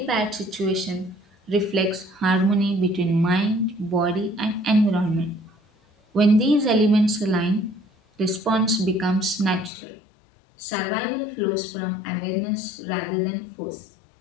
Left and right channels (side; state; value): right; drops out; at 9.7 s